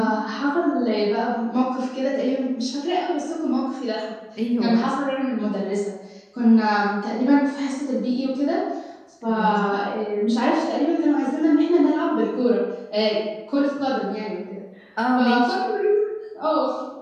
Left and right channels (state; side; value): identical; both; correlation 1.00